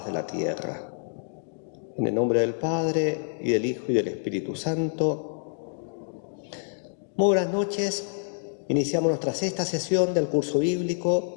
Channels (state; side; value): silent; right; digital silence